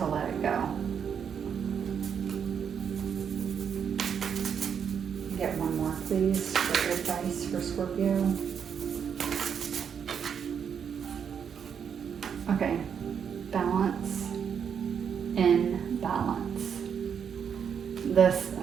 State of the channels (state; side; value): quieter; left; 7.5 dB